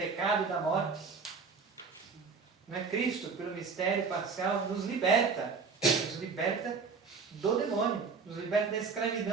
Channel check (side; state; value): left; quieter; 5.0 dB